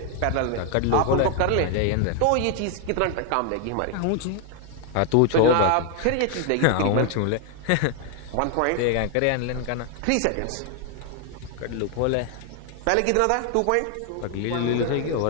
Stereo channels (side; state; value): both; different; correlation 0.00